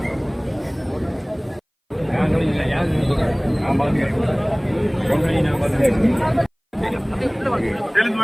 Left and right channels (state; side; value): identical; both; correlation 1.00